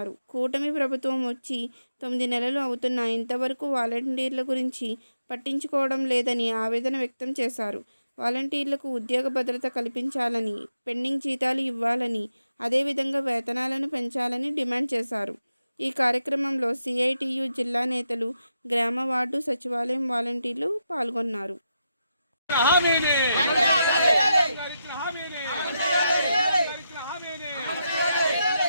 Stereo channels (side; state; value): both; inverted; correlation -0.85